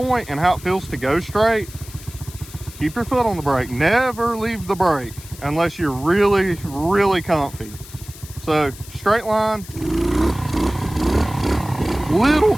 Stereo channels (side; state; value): left; noise; hiss, 18 dB below the sound